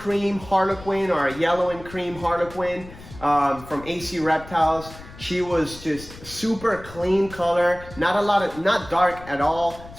harlequin or a yellow and cream harlequin from AC Reptiles. She was just super clean color, not dark at all.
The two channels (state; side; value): noise; left; rumble, 17 dB below the sound